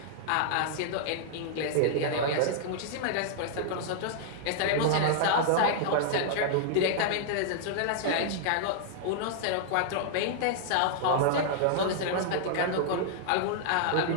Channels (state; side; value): different; both; correlation -0.01